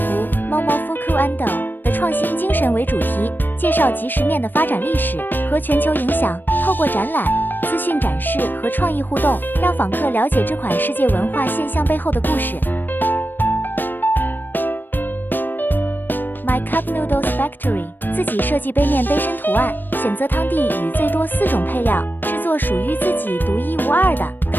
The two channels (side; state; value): right; late; 0.093 ms